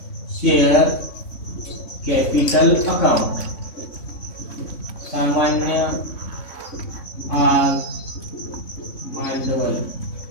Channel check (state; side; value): late; right; 3.6 ms